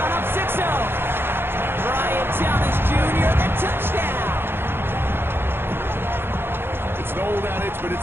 up 6-0. Brian Thomas Jr., the touchdown. It's an old adage, but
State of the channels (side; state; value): left; late; 0.11 ms